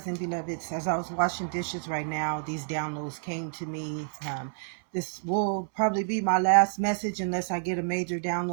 beloveds. As I was washing dishes right now, these downloads came to me. This will probably be my last message unless I get a major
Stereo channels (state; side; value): silent; left; 59 dB below the other